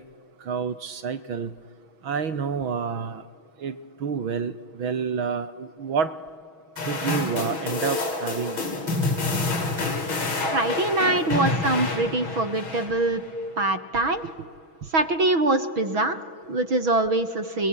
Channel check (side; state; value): left; late; 6.2 ms